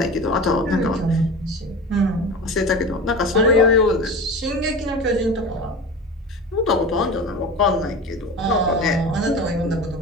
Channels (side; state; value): both; normal; correlation 0.31